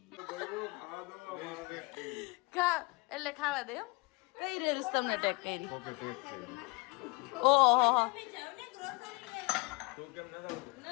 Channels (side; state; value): right; quieter; 28.4 dB